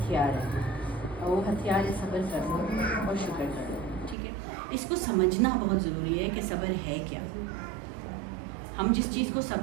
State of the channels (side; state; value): left; drops out; at 4.2 s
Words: ہے، اور وہ ہتھیار ہے صبر کرنا اور شکر کرنا. ٹھیک ہے، اس کو سمجھنا بہت ضروری ہے کہ صبر ہے کیا. ہم جس چیز کو